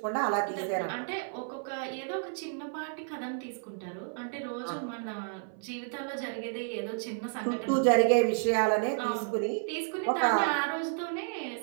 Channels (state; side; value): silent; left; 57 dB below the other